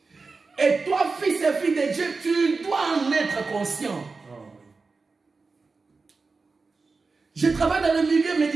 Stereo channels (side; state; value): left; quieter; 4.2 dB